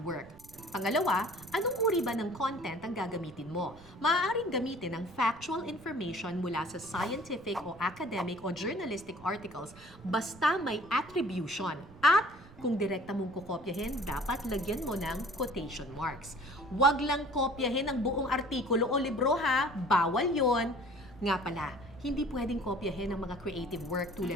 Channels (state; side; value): noise; right; rumble, 21 dB below the sound